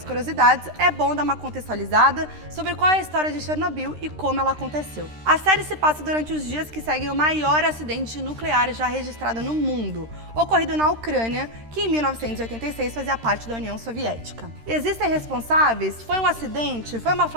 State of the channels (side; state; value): left; late; 13 ms